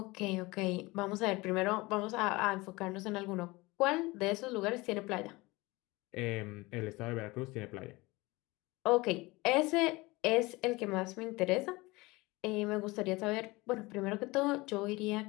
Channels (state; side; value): quieter; right; 22.4 dB